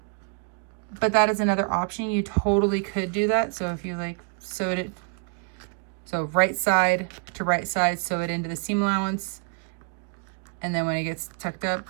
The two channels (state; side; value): quieter; left; 35.2 dB